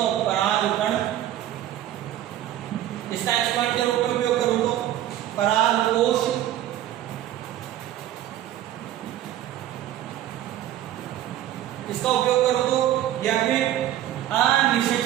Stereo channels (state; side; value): quieter; left; 12.6 dB